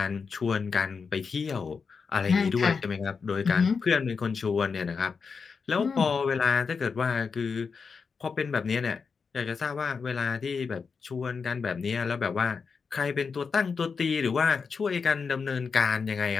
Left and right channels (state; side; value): quieter; right; 5.4 dB